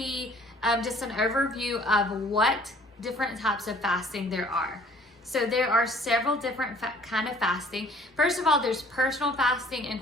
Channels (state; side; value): normal; both; correlation 0.55